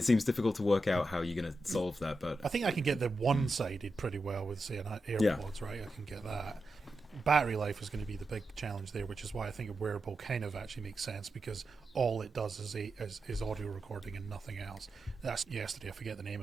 seems difficult to work out how you're going to solve that. But I think I can get the one-sided pretty well with, say, an AirPods, right? I can get that. Battery life is going to be the big challenge there, which is why I think a wearable kind of actually makes sense, because all it does is audio recording and nothing else. That's yesterday. I forget the name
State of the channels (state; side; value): normal; both; correlation 0.89